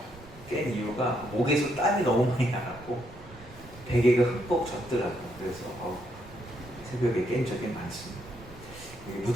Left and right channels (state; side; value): noise; right; rumble, 19 dB below the sound